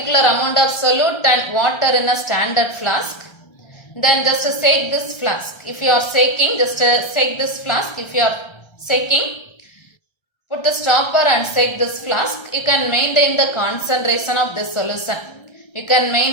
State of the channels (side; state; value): right; late; 1.3 ms